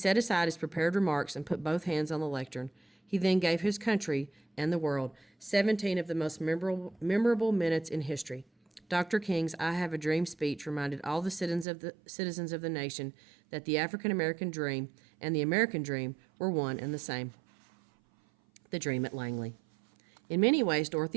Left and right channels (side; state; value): left; drops out; at 11.7 s